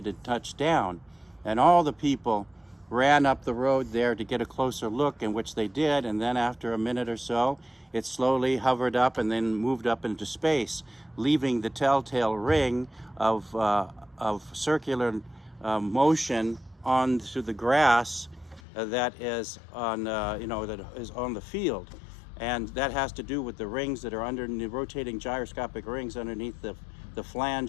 and touched down. And all the people ran up the road there to get a closer look, in which they did. And then after a minute or so, it slowly hovered up and then moved up into space, leaving the telltale ring of circular motion onto the grass that is on that is on the field. And that has to do with the rings that are under the rotating gyroscopic rings underneath the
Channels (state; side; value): drops out; right; at 18.6 s